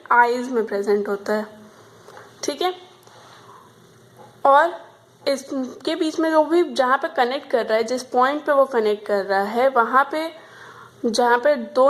eyes में प्रेजेंट होता है, ठीक है। और इसके बीच में जो भी जहाँ पे कनेक्ट कर रहा है, जिस पॉइंट पे वो कनेक्ट कर रहा है, वहाँ पे जहाँ पे 2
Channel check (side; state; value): both; identical; correlation 1.00